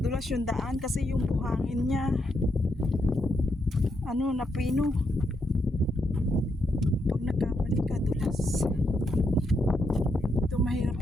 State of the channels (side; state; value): both; normal; correlation 0.80